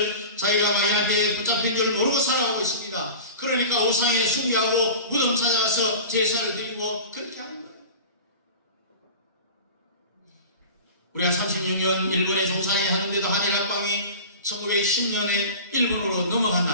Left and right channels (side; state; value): both; inverted; correlation -0.36